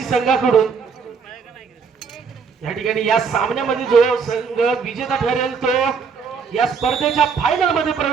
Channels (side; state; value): left; quieter; 5.7 dB